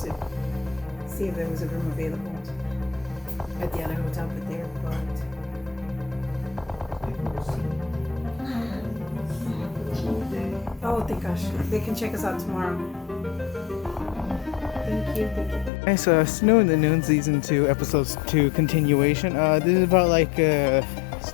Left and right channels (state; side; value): drops out; right; at 15.7 s